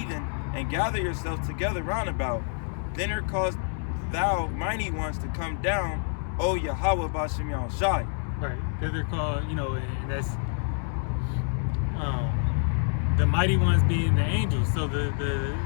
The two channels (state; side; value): silent; right; 60 dB below the other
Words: and gather yourselves together round about. Then cause thou mighty ones to come down, O Yahweh Bashem Yahushai. Right. They're called, and that's the mighty ones being the angels. So the